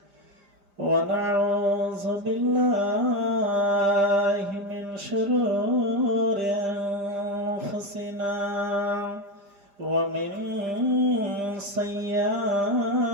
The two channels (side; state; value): left; late; 5.0 ms